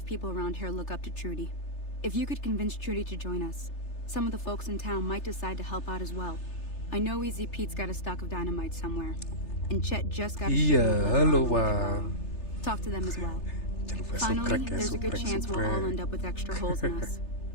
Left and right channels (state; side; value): late; right; 3.3 ms